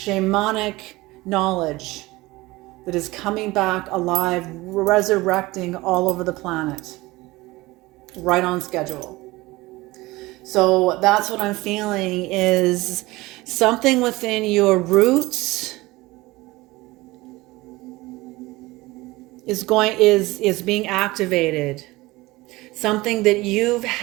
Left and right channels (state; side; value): quieter; left; 20.4 dB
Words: knowledge that is coming back alive, resurrecting all over the planet. Right on schedule. So that's what I'm feeling, is something within your roots is being activated. Something that you've